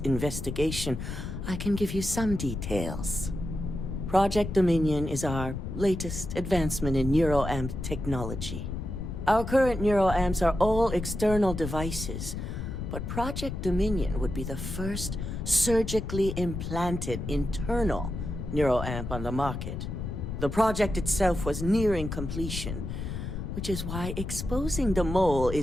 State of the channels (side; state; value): left; noise; rumble, 6 dB below the sound